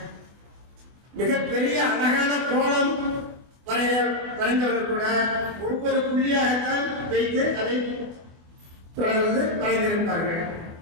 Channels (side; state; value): left; late; 24 ms